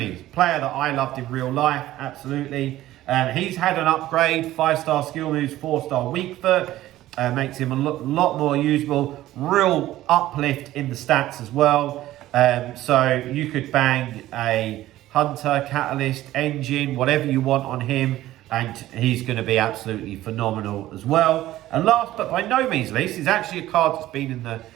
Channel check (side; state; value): left; quieter; 15.0 dB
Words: player that I loved in real life, absolutely. He's had an upgrade, 5-star skill moves, 4-star weak foot. Makes him a lot more usable. Real uplift in the stats as well. So you could bang a Hunter, Catalyst, Engine, whatever you want on him. And he's going to be absolutely phenomenal as well. And last but by no means least, is actually a card that's been in the